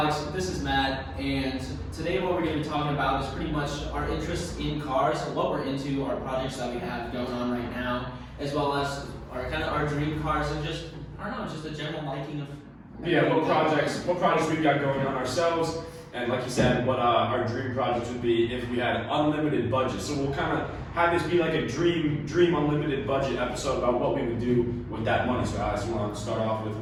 this is Matt, and today what we're going to be talking about is pretty much our interests in cars, what we're into, our projects that we have going on right now, as well as our dream cars and just, I don't know, just a general liking of... Yeah, what projects we've got going on ourselves, and like you said, what our dream projects would be if we had unlimited budget. So we'll kind of have this be like a dream unlimited budget episode about what we would do with that money. So Alex, you want to start off with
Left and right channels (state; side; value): identical; both; correlation 1.00